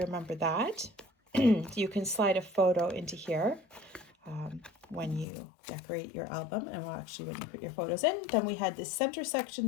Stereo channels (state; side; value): drops out; right; at 5.2 s